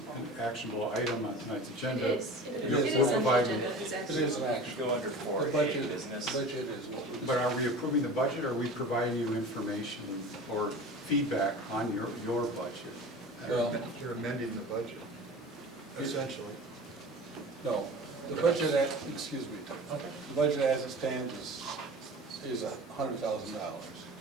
actionable item on tonight's agenda. It is. It we'll is on the provide- agenda. It's It actually. is an action. Go under The 4A budget, business. budget is what we. But are we approving the budget, or are we providing you information or feedback on your budget? Well, You're amending the budget, essentially. no, the budget, excuse me, the budget as it stands is $100,000.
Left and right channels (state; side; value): normal; both; correlation 0.37